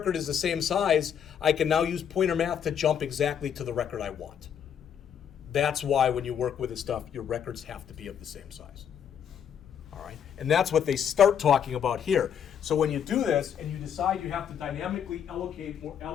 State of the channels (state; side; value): quieter; right; 8.4 dB